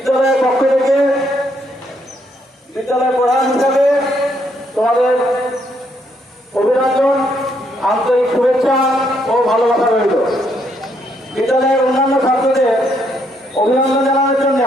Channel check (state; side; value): normal; both; correlation 0.73